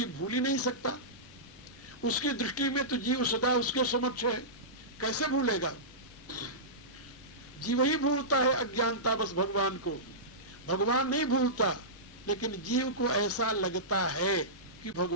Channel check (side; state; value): both; normal; correlation -0.17